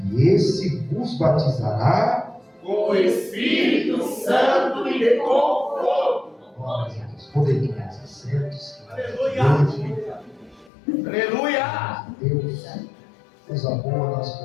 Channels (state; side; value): drops out; right; at 10.7 s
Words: E esse vos batizará com o Espírito Santo e com fogo. Glória a Deus. Poder tomar os assentos. Aleluia. Aleluia. Deus, coisa boa, nós